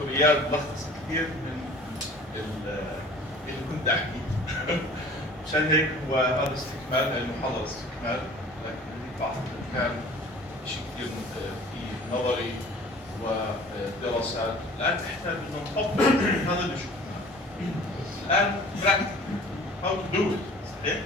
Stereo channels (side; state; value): both; normal; correlation 0.46